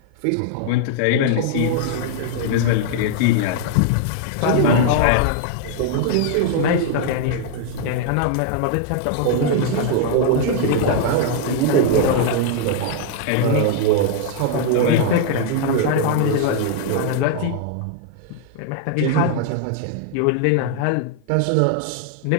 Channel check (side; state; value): both; different; correlation 0.00